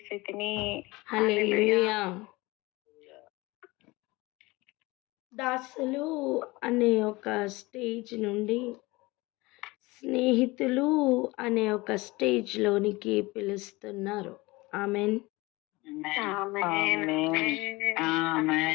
తిని. హల్లెలూయా. దాసులు అనే ఒక స్టేజ్ నుండి స్నేహితులు అనే ఒక స్టేజ్ లోనికి పిలుస్తున్నారు. ఆమెన్.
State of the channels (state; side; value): quieter; right; 22.3 dB